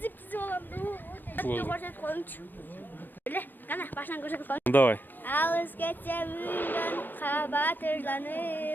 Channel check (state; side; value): late; right; 0.090 ms